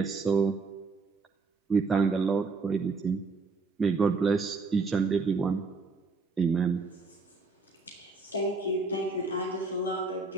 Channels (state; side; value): quieter; left; 4.1 dB